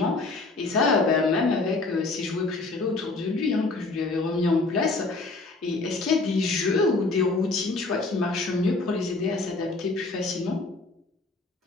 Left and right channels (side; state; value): right; quieter; 3.5 dB